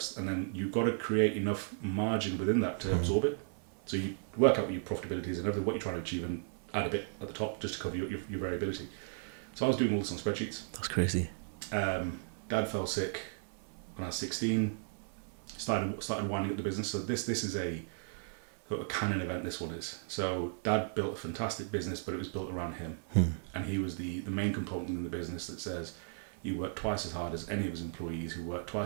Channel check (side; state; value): left; silent; 54 dB below the other